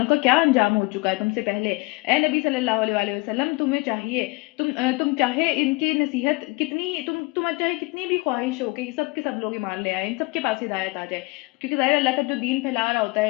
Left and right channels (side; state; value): right; quieter; 25.0 dB